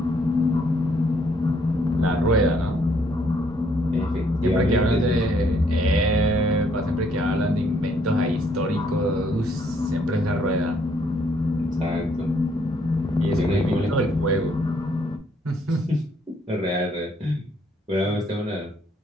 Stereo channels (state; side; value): normal; both; correlation 0.68